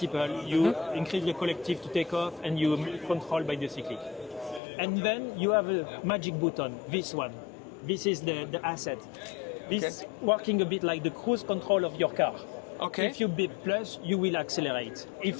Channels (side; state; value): right; drops out; at 4.6 s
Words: you increase the collective to take off and you control by the cyclic. And then you have a magic button, this one. This is the asset. This is working a bit like the cruise control of your car. Okay. If you beep plus, you will accelerate.